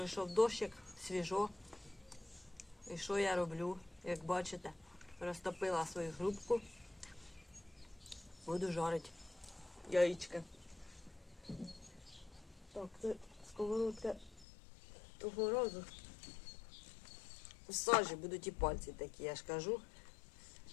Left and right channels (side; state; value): right; drops out; at 14.5 s